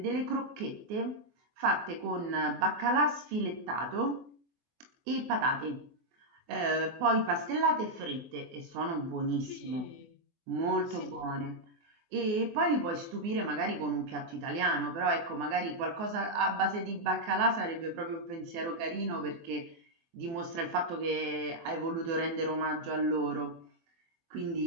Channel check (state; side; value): late; left; 24 ms